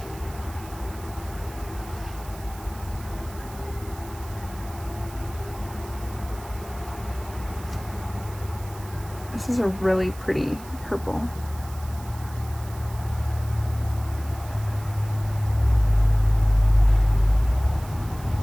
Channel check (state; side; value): noise; right; hiss, 19 dB below the sound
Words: This is a really pretty purple.